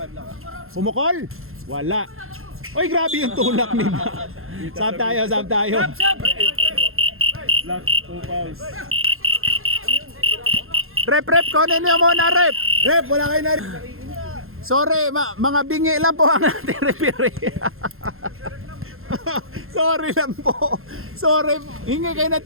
Pumukol? Wala. Oy, grabe yung tulak ni Ma. Sab tayo. Black, 2 fouls. Rep, kunin niyo muna, rep. Rep, wala kayo na. Sorry, mga bingi lang po ang ating referee. Sorry lang po. Sorry, hingi kayo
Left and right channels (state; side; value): late; left; 0.61 ms